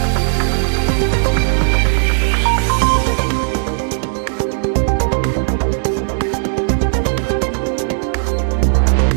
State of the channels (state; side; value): silent; left; digital silence